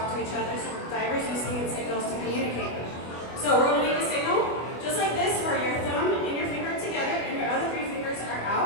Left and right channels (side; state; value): right; late; 25 ms